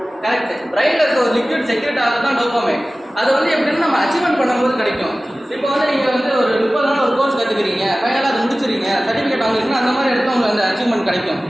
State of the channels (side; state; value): both; normal; correlation 0.97